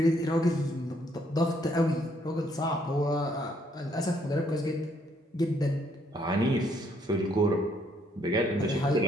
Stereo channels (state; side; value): normal; both; correlation 0.69